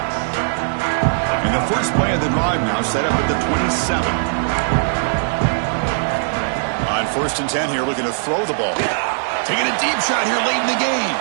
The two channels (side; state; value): left; silent; digital silence